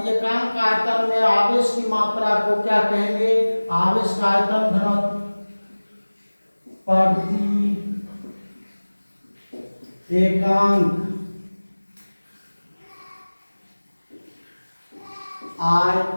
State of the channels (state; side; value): inverted; both; correlation -1.00